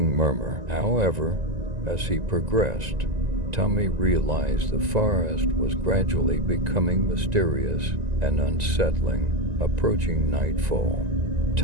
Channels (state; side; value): late; left; 1.9 ms